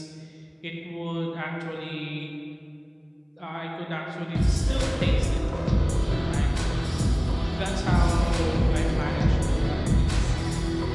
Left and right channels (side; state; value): both; identical; correlation 1.00